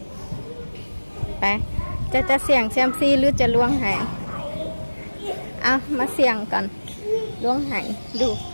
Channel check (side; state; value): both; inverted; correlation -1.00